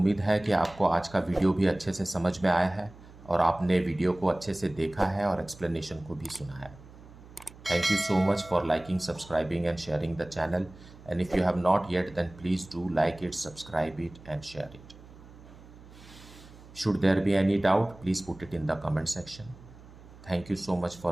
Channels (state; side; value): noise; right; hum, 20 dB below the sound